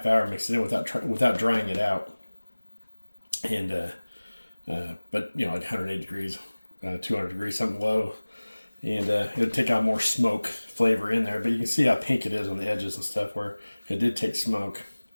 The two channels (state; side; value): inverted; both; correlation -1.00